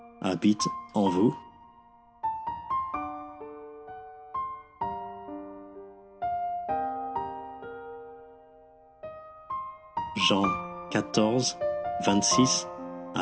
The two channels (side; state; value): both; identical; correlation 1.00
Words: habite en vous? Jean 14, 26